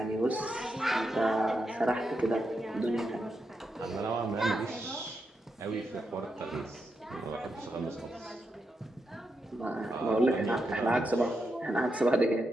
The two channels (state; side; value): normal; both; correlation 0.84